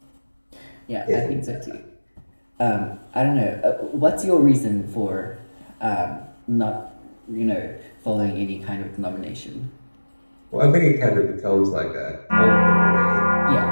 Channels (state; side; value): inverted; both; correlation -1.00